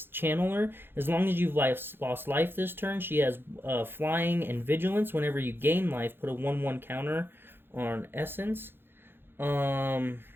Channeler. As long as you've lost life this turn, she has Flying and Vigilance. Whenever you gain life, put a 1/1 counter on Essence.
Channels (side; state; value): left; late; 0.10 ms